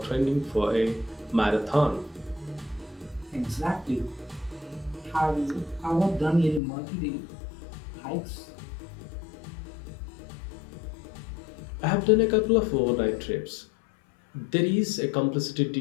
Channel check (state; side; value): drops out; right; at 6.6 s